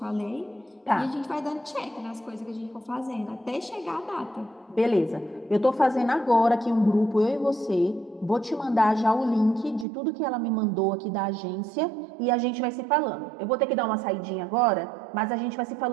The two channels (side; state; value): left; drops out; at 9.9 s